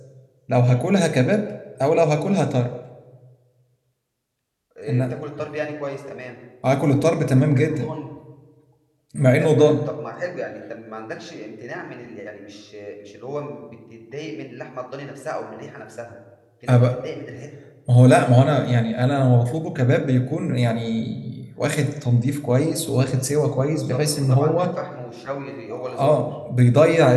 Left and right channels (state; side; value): identical; both; correlation 1.00